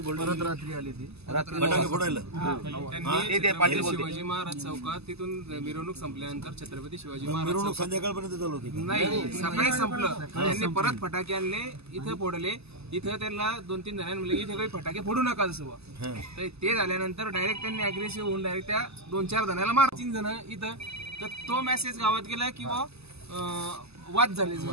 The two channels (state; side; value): late; left; 0.79 ms